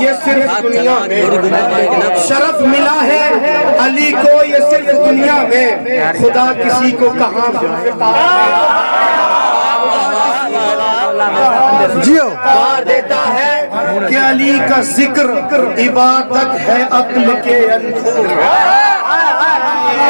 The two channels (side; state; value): both; inverted; correlation -1.00